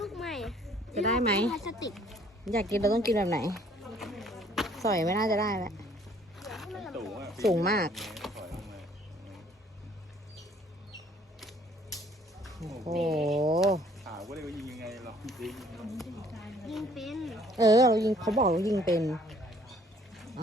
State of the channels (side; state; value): both; normal; correlation 0.59